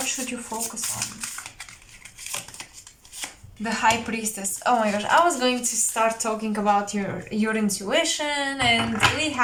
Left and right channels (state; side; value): identical; both; correlation 1.00